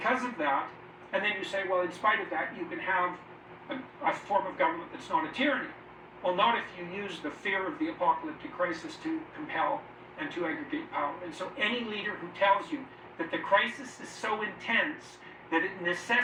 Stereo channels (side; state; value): both; identical; correlation 1.00